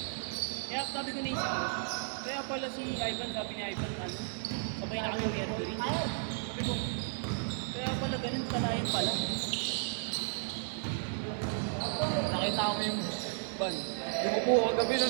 Kaya sabi ko naisip ko. Kaya pala si Ivan, sabi ni Ivan, ano, sabay na kami ni Mercury. Sabi ko, kaya pala ganun, kalayan pala. Nakita ko yung ban. Lumupo ko kagabi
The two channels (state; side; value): silent; left; digital silence